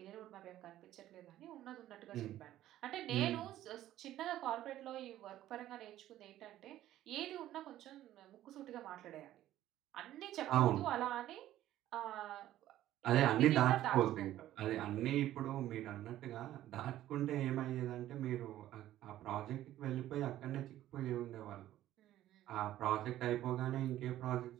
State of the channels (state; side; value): quieter; left; 13.5 dB